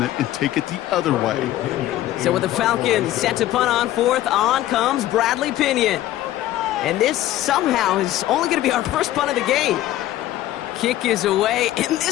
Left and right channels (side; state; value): right; quieter; 14.2 dB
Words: it and take it the other way. So with the Falcons set to punt on fourth, on comes Bradley Pinion. And this somehow is only going to be our first punt of the game. Kick is away, and